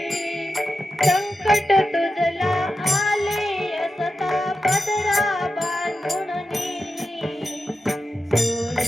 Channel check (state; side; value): normal; both; correlation 0.91